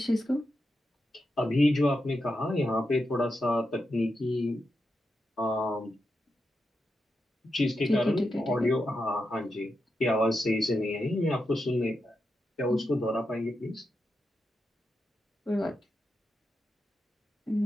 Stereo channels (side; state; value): both; normal; correlation 0.87